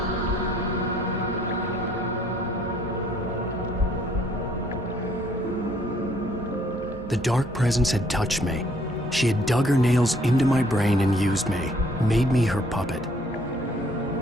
The dark presence had touched me. She had dug her nails into my brain and used me, made me her puppet.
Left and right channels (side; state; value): both; normal; correlation 0.63